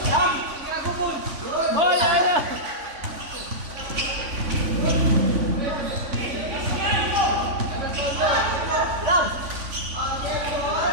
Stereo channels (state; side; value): late; left; 3.5 ms